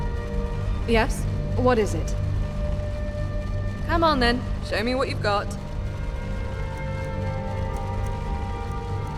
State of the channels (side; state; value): both; identical; correlation 1.00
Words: Yes? What is it? Come on then, show me what you've got.